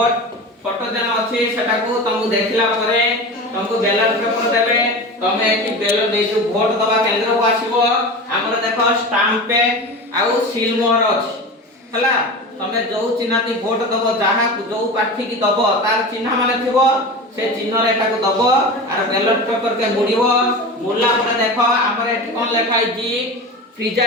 फोटो जन अछि सेटा को तुम देखिला परे तुमको बैलेट पेपर देबे तमे एठी बैलेट दे जो वोट दबा केंद्र को आसीबो हमर देखो स्टाम्प पे आउ सील मोहर अछि हला। तमे जो चिन्हती वोट दबो जहा जो प्रार्थी की दबो तार चिन्ह माने थिबो से चिन्ह रे एटा को दबो आर बैलेट पेपर के मुड़िबो मुड़ला परे देखो हमर एठी कोन लेखा है जी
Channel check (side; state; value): both; normal; correlation 0.29